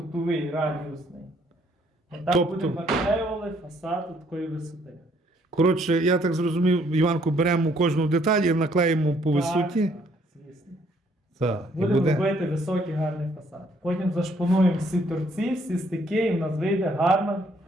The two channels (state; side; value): normal; both; correlation 0.66